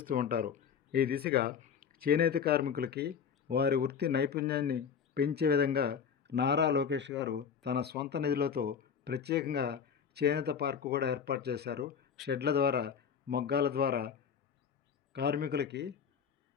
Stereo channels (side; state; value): right; quieter; 7.2 dB